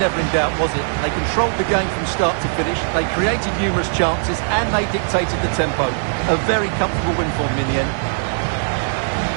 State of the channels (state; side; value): silent; left; digital silence